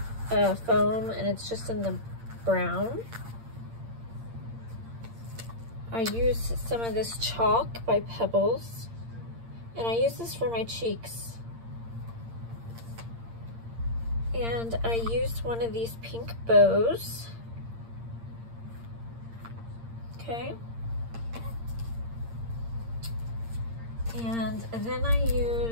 foam, and it's just in the brown. I used some of this chalk by Pebbles, and I use this for my cheeks. And I used one of these pink bows. Okay. And then I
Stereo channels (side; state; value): left; late; 8.7 ms